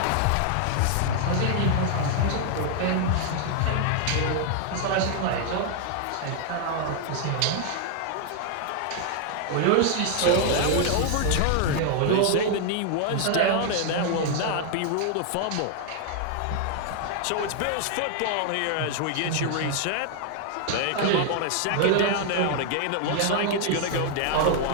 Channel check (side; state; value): both; different; correlation 0.00